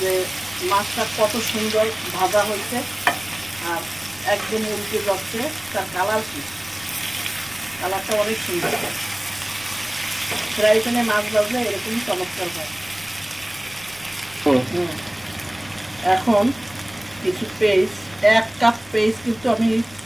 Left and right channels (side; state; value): left; noise; rumble, 23 dB below the sound